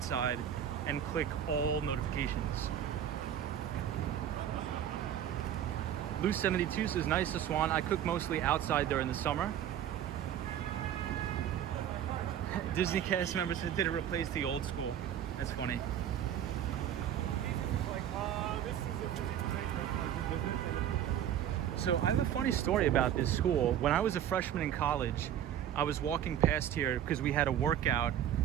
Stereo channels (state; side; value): quieter; left; 10.2 dB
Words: side and click all notifications. Lou72 says, nice to Swan. I cook mostly outside during the summer. Disney cast member said, did it replace the old school? That's funny. So I have a funny story about this school. When I was a freshman in college, I was walking past here because we had a workout